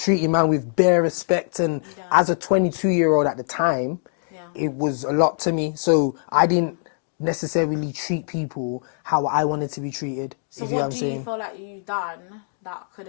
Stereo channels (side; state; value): right; silent; digital silence